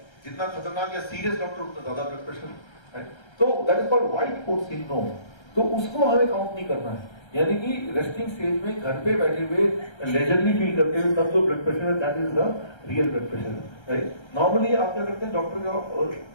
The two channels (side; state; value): right; late; 1.3 ms